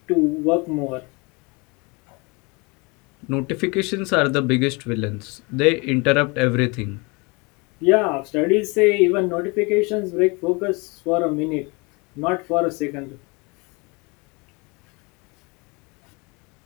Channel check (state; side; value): quieter; right; 28.4 dB